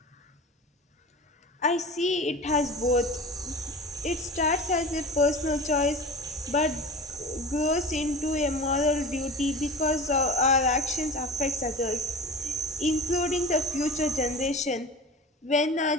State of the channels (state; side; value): normal; both; correlation 0.34